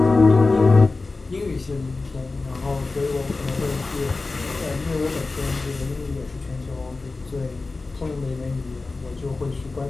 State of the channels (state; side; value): quieter; right; 3.7 dB